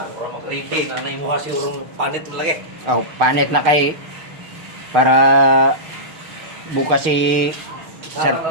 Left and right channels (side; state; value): left; late; 6.4 ms